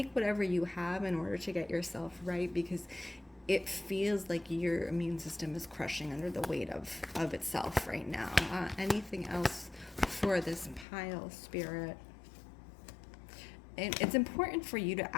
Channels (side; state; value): right; drops out; at 10.9 s